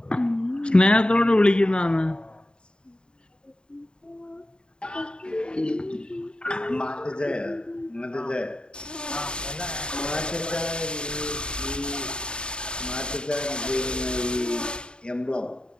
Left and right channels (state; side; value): late; right; 0.051 ms